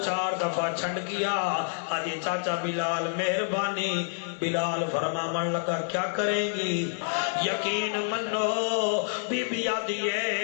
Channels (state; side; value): silent; right; digital silence